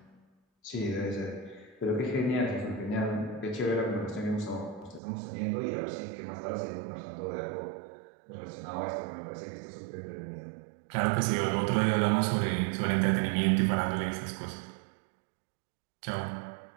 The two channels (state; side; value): drops out; left; at 5.0 s